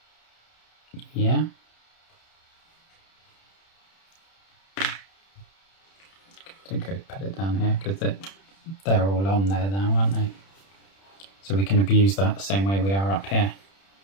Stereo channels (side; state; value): right; late; 31 ms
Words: Yeah. I think I'd put it down here because they're all on there now, aren't they? So we can abuse that the same way we are up here.